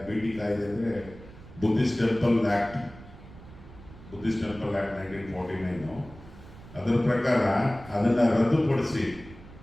ಭೇಟಿ ಕಾಯ್ದೆ ಅಂದರೆ ಬುದ್ಧಿಸ್ಟ್ ಟೆಂಪಲ್ ಆ್ಯಕ್ಟ್ 1949 ಅದರ ಪ್ರಕಾರ ಅದನ್ನು ರದ್ದುಪಡಿಸಿ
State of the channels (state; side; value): noise; right; rumble, 18 dB below the sound